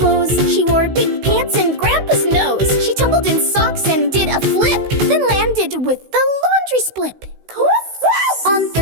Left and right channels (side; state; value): left; late; 16 ms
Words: She wore big pants and Grandpa's nose. She tumbled in socks and did a flip, then landed with the laundry split. On